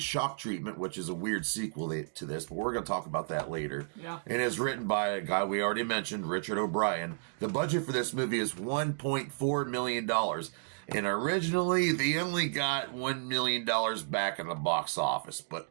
Treatment, which is a weird sequel to this, but we're going to talk about that later. Yeah. It is written by a guy we already mentioned, Richard O'Brien. The budget for this movie is $1.4 million. And originally, they only got $1 million back in the box office. But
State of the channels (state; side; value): silent; left; digital silence